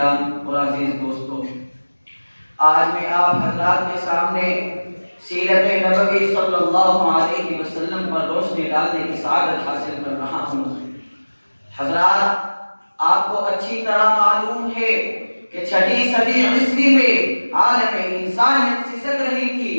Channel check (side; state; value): both; inverted; correlation -1.00